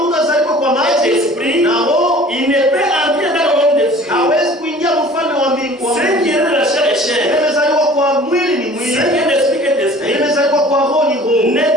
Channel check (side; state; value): both; normal; correlation 0.47